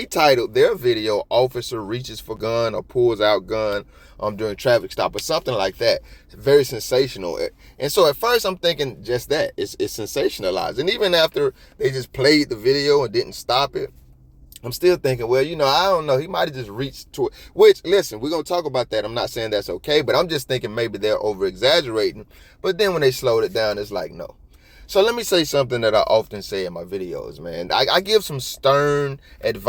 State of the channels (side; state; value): both; identical; correlation 1.00